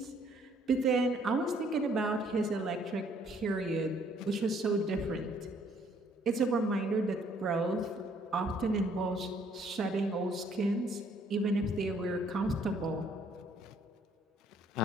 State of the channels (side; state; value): both; normal; correlation 0.63